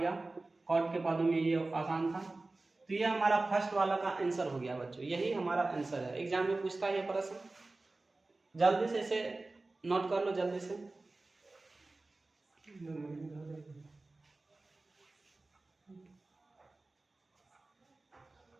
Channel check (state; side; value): quieter; left; 3.2 dB